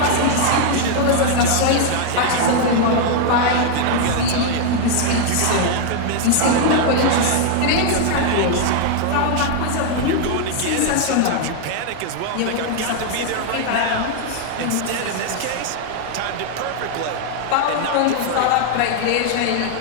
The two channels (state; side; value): different; both; correlation 0.00